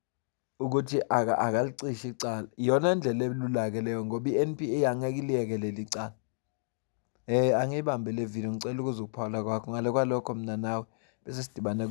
ukuthi akalicishe icala. Iyona ndlela elula-ke leyo ngoba i-NPA angeke iliyeke leli cala. Angiyibambe le video, ngicela ukuze ukuphawula kwakho ngale kwalokho mina nawe bese sidibana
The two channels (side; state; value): right; silent; digital silence